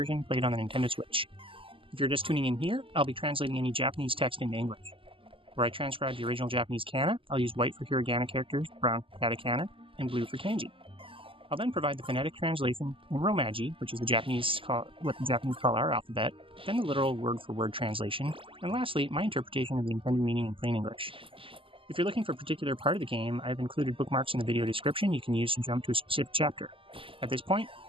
played on the Nintendo Switch. If you're just tuning in here, I'll be translating any Japanese text into English. Where I transcribe the original Japanese kana, I'll use white for hiragana characters, brown for katakana, and blue for kanji. I'll then provide the phonetic translation in Romaji, which is what the Japanese call our alphabet, then the literal word-for-word translation, and lastly, my interpretation of the intended meaning in plain English. If you're looking for a particular part of the game, I've included bookmarks in the video description you can use to jump to a specific chapter. At this point,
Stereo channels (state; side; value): late; left; 0.25 ms